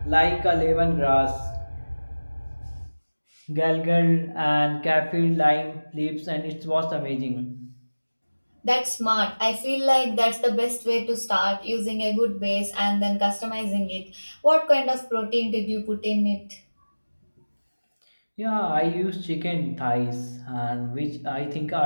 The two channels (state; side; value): inverted; both; correlation -1.00